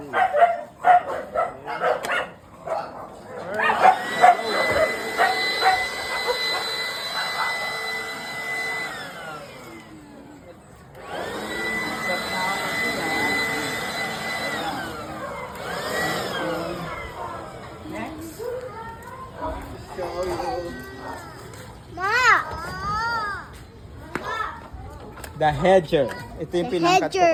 The hedger. Ito yung pinangkat ko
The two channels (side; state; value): both; identical; correlation 1.00